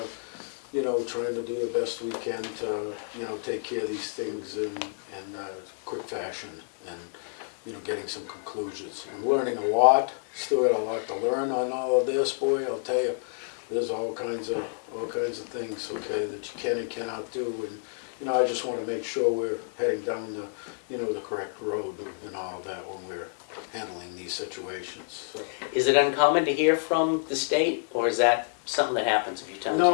to do the best we can to, take care of these things in quick fashion and, getting some conclusions. I'm learning a lot, still got a lot to learn on all of this, boy, I'll tell you. There's all kinds of things, okay, that you can and cannot do, and, I just want to make sure we're heading down the, the correct road and all of that when we're handling these situations, so. Is it uncommon to hear from the state, or is that something that happens a few times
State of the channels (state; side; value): silent; right; digital silence